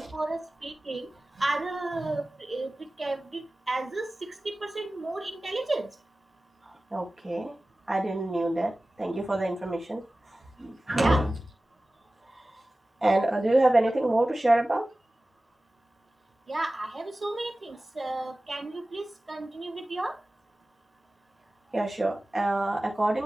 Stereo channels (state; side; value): normal; both; correlation 0.97